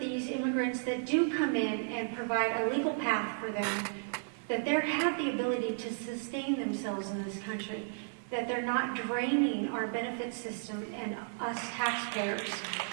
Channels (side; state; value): left; silent; digital silence